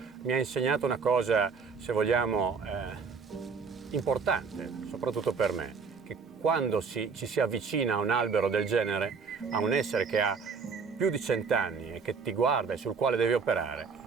mi ha insegnato una cosa, se vogliamo, importante, soprattutto per me, che quando ci si avvicina a un albero del genere, a un essere che ha più di 100 anni e che ti guarda e sul quale devi operare,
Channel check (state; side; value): quieter; left; 5.3 dB